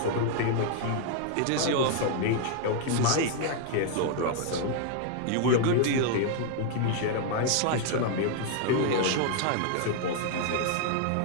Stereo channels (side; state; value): both; different; correlation 0.00